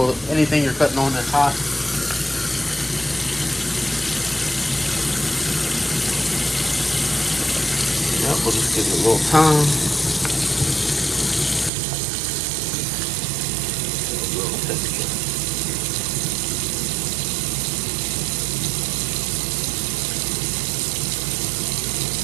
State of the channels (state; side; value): drops out; left; at 11.7 s